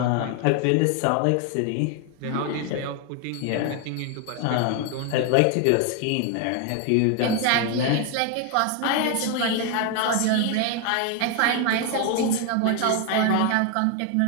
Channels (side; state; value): both; different; correlation 0.01